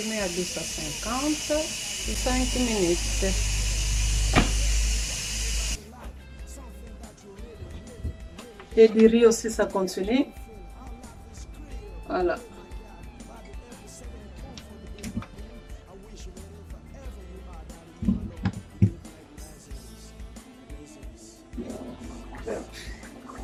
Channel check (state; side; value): identical; both; correlation 1.00